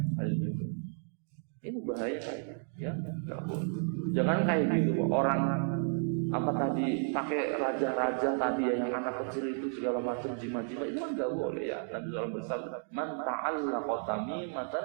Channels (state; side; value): silent; left; 56 dB below the other